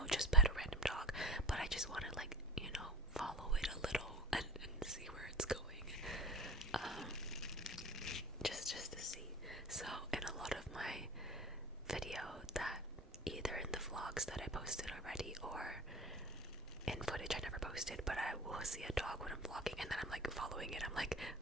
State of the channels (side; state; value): both; normal; correlation 0.36